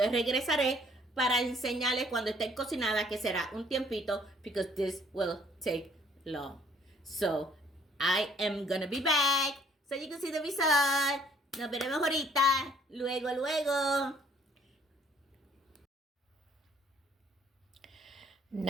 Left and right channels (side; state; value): both; normal; correlation 0.61